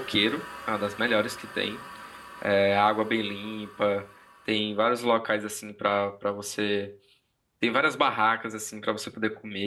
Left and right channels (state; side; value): identical; both; correlation 1.00